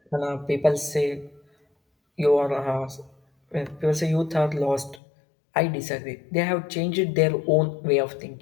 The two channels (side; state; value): right; drops out; at 5.0 s